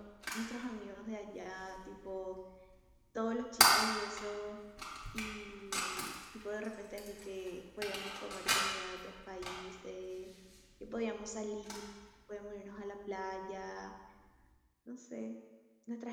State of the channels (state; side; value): identical; both; correlation 1.00